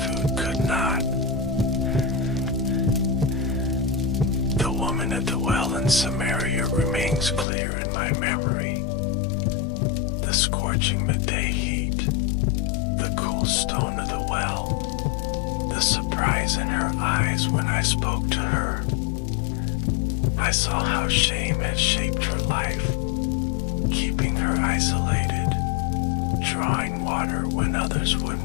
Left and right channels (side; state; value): right; drops out; at 7.5 s